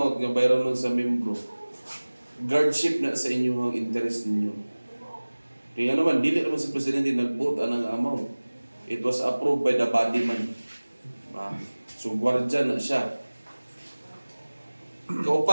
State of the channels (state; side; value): inverted; both; correlation -1.00